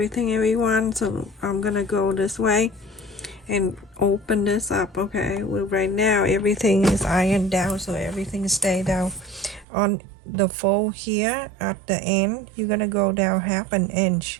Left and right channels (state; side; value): drops out; left; at 9.7 s